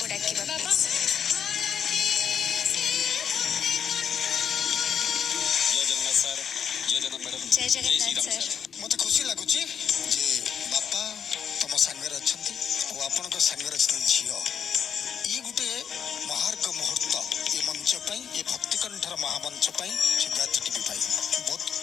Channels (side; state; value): right; quieter; 7.7 dB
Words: ଡାକିବା। ବାପା ଜୟ ଜଗନ୍ନାଥ ସାର୍। ମତେ ଖୁସି ଲାଗୁଛି ଯେ ବାପା ତମ ସାଙ୍ଗରେ ଅଛନ୍ତି ଆଉ ଆପଣଙ୍କ ସାଙ୍ଗରେ ଅଛନ୍ତି ଝିଅ। ଇଏ ଗୋଟେ ମହାର୍ଘ ମୁହୂର୍ତ୍ତ ଏ ମଞ୍ଚ ପାଇଁ, ଏ ଭକ୍ତିକଣ୍ଠର ମହାମଞ୍ଚ ପାଇଁ, ସିଦ୍ଧାର୍ଥ ଟିଭି ପାଇଁ। ବହୁତ